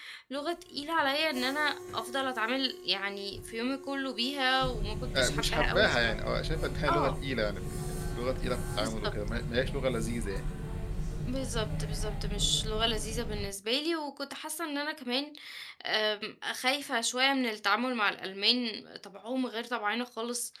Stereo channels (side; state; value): both; identical; correlation 1.00